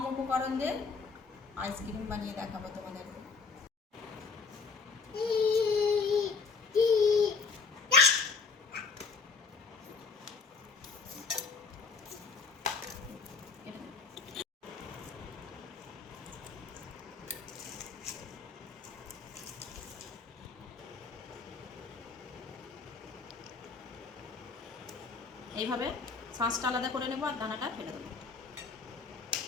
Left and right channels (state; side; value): quieter; right; 4.7 dB